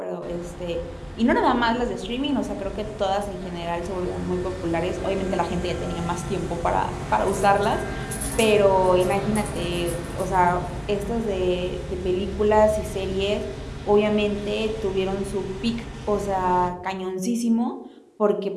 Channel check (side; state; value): both; identical; correlation 1.00